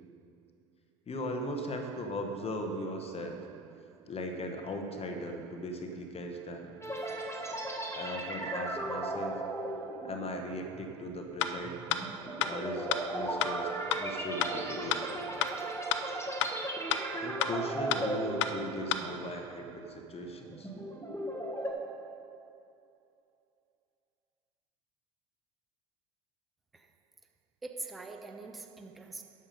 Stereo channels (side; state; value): both; normal; correlation 0.32